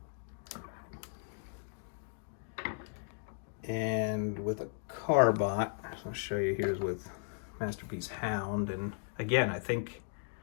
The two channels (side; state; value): right; silent; 54 dB below the other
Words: And with a Carbot, I'll show you, here's with Masterpiece Hound. And again,